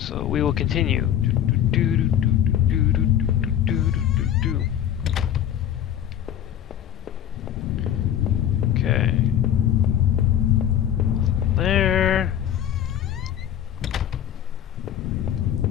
we will continue. Okay. There.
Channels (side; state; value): right; quieter; 10.4 dB